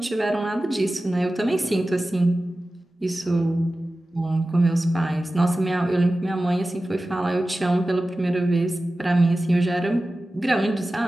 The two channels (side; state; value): both; normal; correlation 0.95